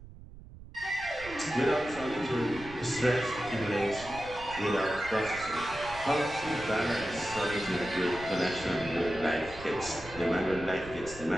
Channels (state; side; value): noise; right; rumble, 16 dB below the sound